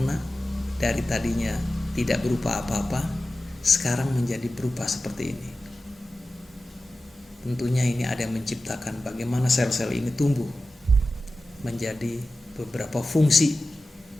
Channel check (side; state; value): both; normal; correlation 0.94